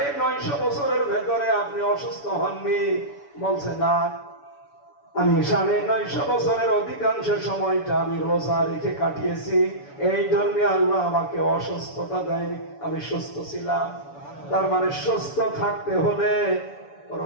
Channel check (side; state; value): right; late; 7.0 ms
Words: বছরের ভেতরে আপনি অসুস্থ হননি? বলছে না, আমি 950 বছরের অধিকাংশ সময়টা আমি রোজা রেখে কাটিয়েছি, এই জন্য আল্লাহ আমাকে অসুস্থতা দেয়নি, আমি সুস্থ ছিলাম। তার মানে সুস্থ থাকতে হলে